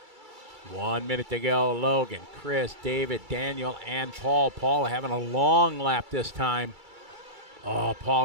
One minute to go. Logan, Chris, David, Daniel, and Paul. Paul having a long lap this time. Oh,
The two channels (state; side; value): late; left; 2.3 ms